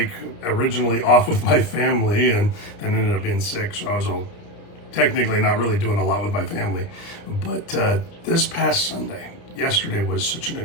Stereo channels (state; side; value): late; right; 29 ms